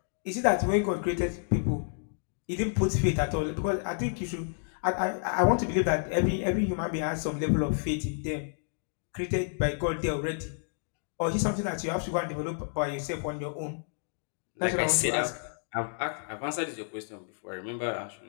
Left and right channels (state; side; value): silent; right; digital silence